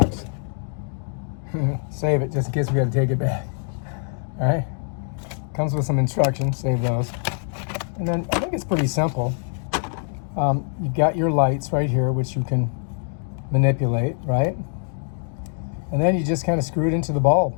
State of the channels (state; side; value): silent; right; 58 dB below the other